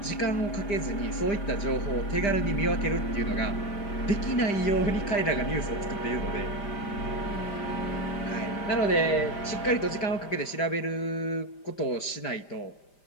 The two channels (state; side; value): late; right; 5.0 ms